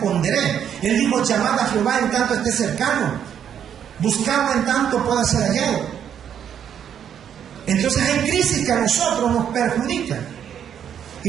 Él dijo, llamad a Jehová en tanto esté cercano. Buscarlo en tanto pueda ser hallado. Entonces hay crisis que a nosotros nos perjudican.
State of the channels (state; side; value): quieter; left; 8.9 dB